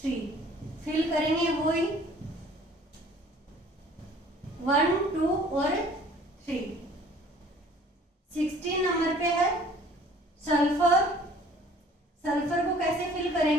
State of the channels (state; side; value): normal; both; correlation 0.53